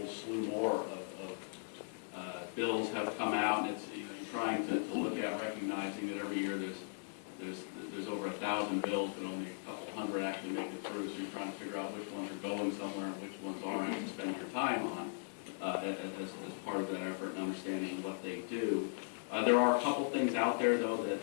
slew more of bills have come out, and it's, you know, you're trying to look at, recognizing that every year there's over 1,000 bills, but only a couple hundred actually make it through. So you're trying to figure out which ones are going somewhere and which ones aren't to spend your time on as part of that effort and understanding what they do. There are a couple things out there though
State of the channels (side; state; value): right; silent; digital silence